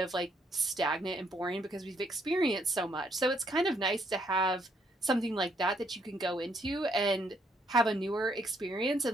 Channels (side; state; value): both; normal; correlation 0.71